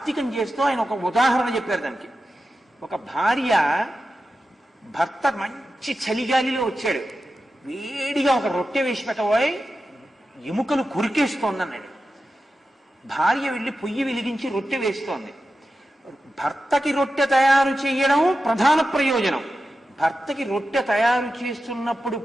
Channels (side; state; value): both; normal; correlation 0.92